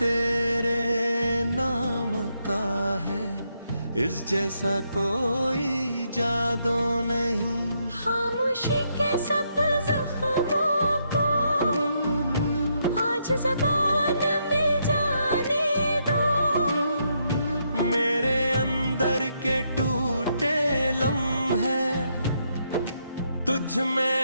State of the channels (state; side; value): inverted; both; correlation -0.78